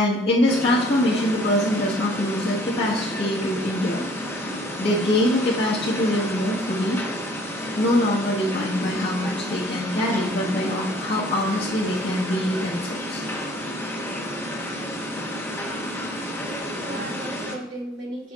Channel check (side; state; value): both; normal; correlation 0.55